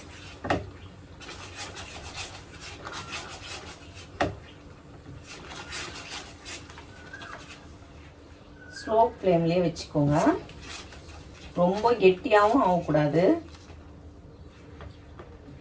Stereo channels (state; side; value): identical; both; correlation 1.00